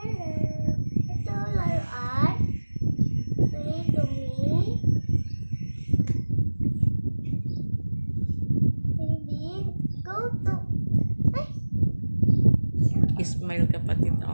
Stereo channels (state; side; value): inverted; both; correlation -1.00